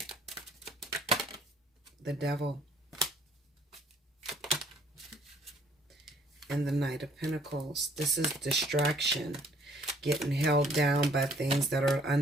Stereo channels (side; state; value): both; normal; correlation 0.61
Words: The Devil. And the Knight of Pentacles. This is distraction. Getting held down by things that are